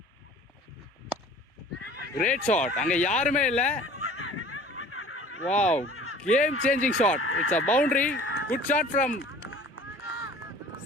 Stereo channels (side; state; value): both; normal; correlation 0.47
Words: Great shot. அங்க யாருமே இல்ல. Wow, game changing shot. It's a boundary. Good shot from